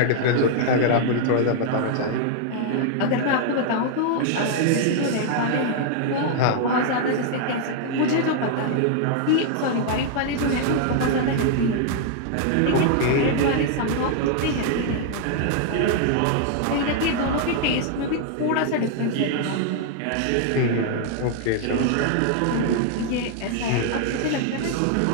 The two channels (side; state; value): both; different; correlation 0.00